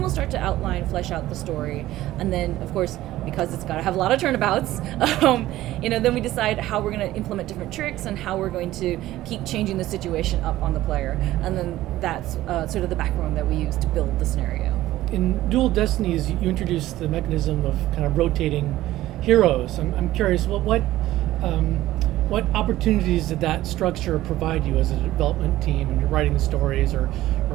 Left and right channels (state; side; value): quieter; left; 15.3 dB